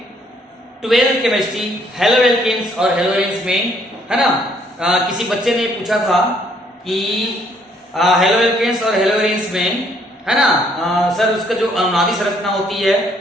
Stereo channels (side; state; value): both; normal; correlation 0.66